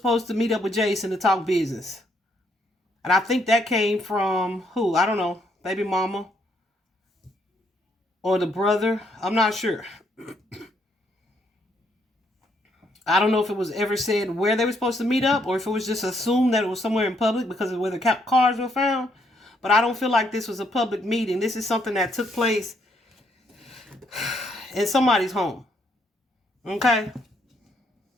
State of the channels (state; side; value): normal; both; correlation 0.72